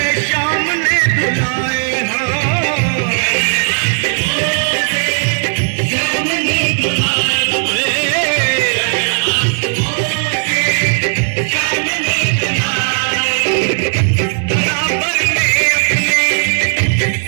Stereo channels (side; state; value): left; silent; 62 dB below the other